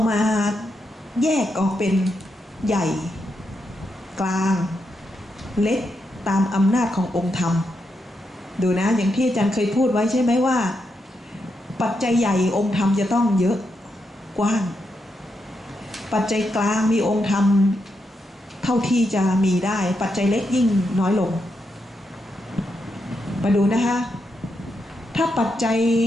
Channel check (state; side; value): normal; both; correlation 0.83